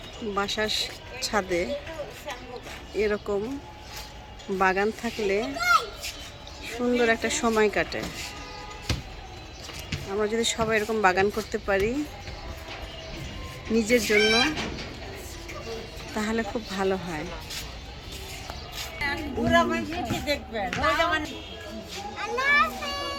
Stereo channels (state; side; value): identical; both; correlation 1.00